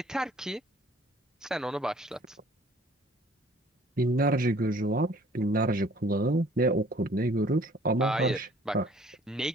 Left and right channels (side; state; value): both; normal; correlation 0.55